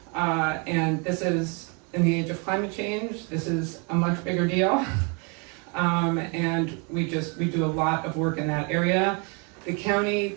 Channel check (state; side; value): quieter; left; 34.2 dB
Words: And this is, in the age of climate change, this is a much bigger deal. And we do a lot of work in that area. The county